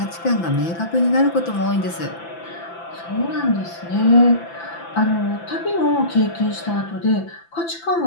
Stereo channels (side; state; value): right; late; 5.9 ms